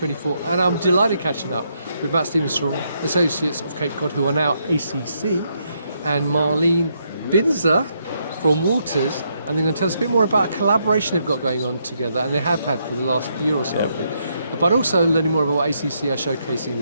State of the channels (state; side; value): inverted; both; correlation -0.77